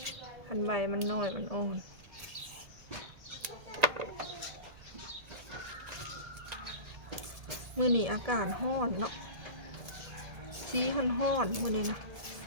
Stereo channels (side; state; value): left; late; 1.8 ms